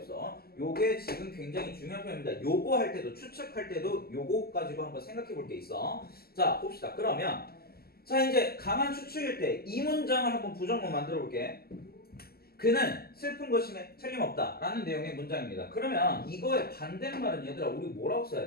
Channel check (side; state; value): right; late; 0.45 ms